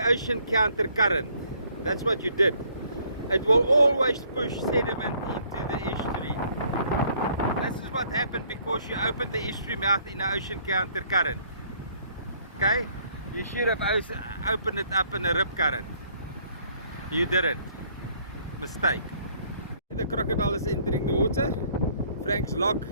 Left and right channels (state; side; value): inverted; both; correlation -0.63